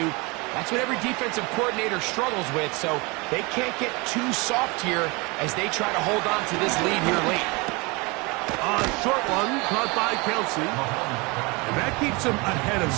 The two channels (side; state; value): left; quieter; 26.9 dB